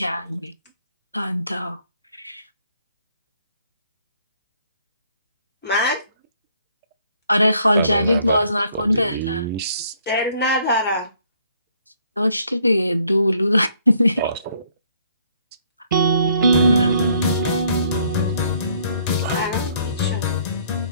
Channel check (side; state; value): both; inverted; correlation -0.65